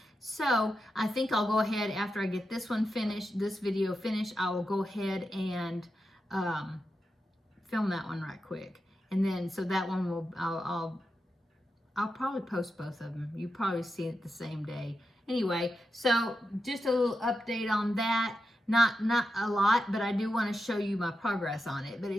So I think I'll go ahead, after I get this one finished, this video finished, I will go ahead and film that one right quick. And then, so that one will, I'll probably post both of them. You probably see it the same day. Anyway, so just a little update on that. Not a lot, but I do want to show you my progress on it. But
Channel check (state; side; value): normal; both; correlation 0.89